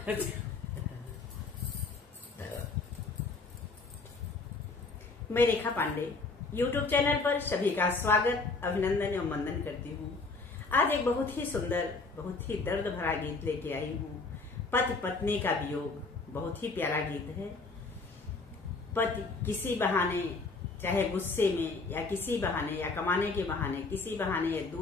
मैं रेखा पांडे YouTube चैनल पर सभी का स्वागत, अभिनंदन एवं वंदन करती हूँ। आज एक बहुत ही सुंदर, बहुत ही दर्द भरा गीत लेके आई हूँ। पति पत्नी का वियोग बहुत ही प्यारा गीत है। पति किसी बहाने, चाहे गुस्से में या किसी बहाने या कमाने के बहाने, किसी बहाने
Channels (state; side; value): quieter; right; 3.9 dB